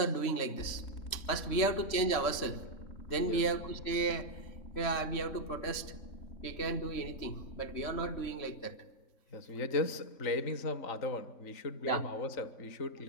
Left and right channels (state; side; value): late; right; 3.1 ms